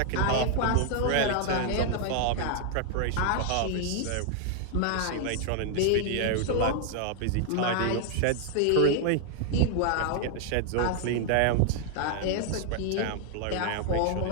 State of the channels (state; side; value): different; both; correlation 0.00